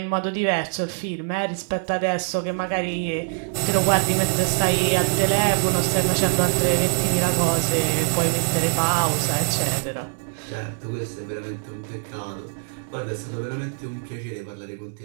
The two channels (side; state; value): left; silent; 63 dB below the other